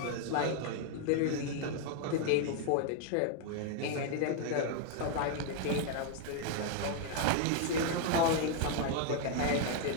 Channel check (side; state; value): both; different; correlation 0.00